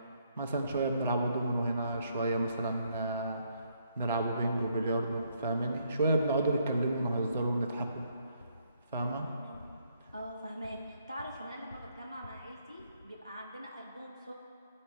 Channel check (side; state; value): both; inverted; correlation -0.72